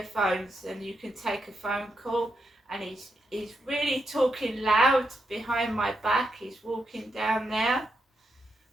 and you can take a phone call, and he's really talking loud behind my back. He's walking down there,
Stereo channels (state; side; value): normal; both; correlation 0.83